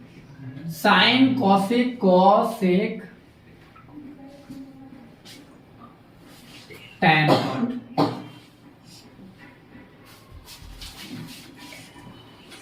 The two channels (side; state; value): both; identical; correlation 1.00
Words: sine cosec cosec tan cot,